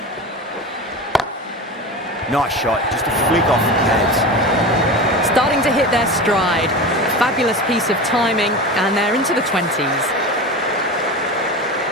Nice shot, just a flick off the pads. Starting to hit their stride. Fabulous piece of timing, and they're into the 20s.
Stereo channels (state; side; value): normal; both; correlation 0.28